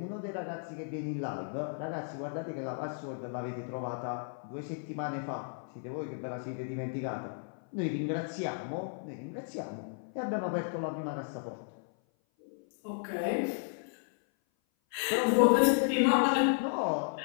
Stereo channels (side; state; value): right; silent; 55 dB below the other